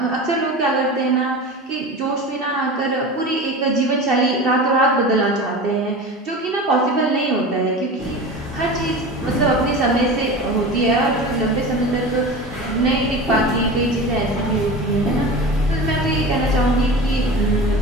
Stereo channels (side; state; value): both; normal; correlation 0.32